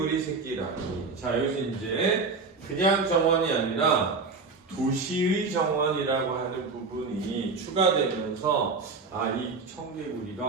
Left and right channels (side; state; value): left; quieter; 4.3 dB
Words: 새끼라니. 자, 여기서 이제 그냥 정원이 아니라 도시의 정원이라고 하는 부분이 추가되면서 이 청개구리가